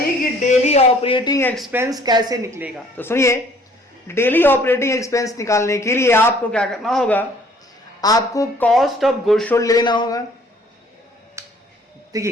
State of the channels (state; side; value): normal; both; correlation 0.57